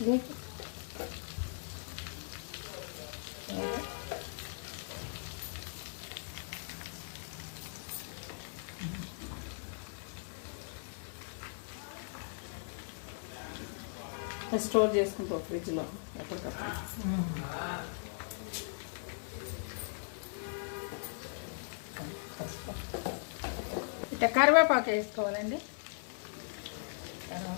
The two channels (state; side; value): silent; right; 52 dB below the other